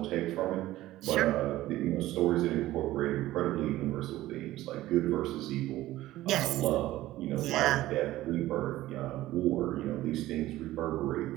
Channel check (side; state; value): left; quieter; 15.8 dB